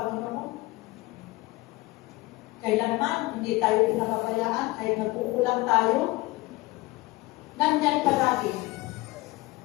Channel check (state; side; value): quieter; right; 20.9 dB